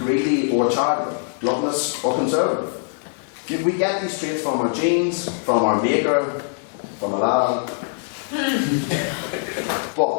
or charitable, gluttonous or conservative. We get these traits from our genes, from our maker, from Aladdin.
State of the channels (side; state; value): right; silent; 57 dB below the other